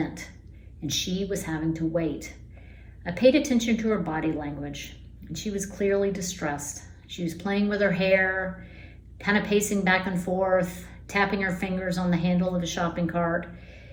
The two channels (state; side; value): identical; both; correlation 1.00